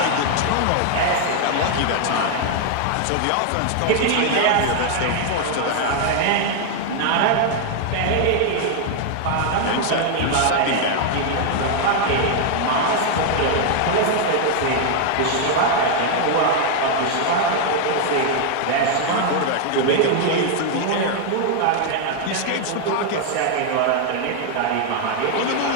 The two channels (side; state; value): both; different; correlation 0.00